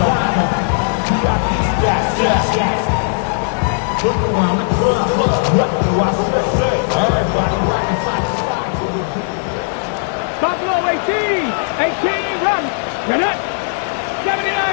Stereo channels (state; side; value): silent; right; digital silence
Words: Buffalo 18. 18, run. You're not.